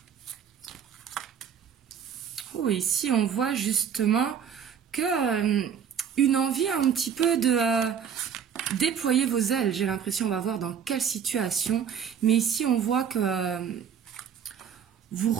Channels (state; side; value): quieter; left; 7.8 dB